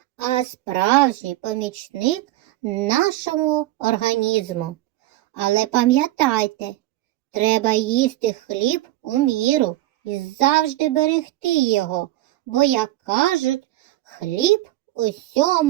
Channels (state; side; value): quieter; left; 16.1 dB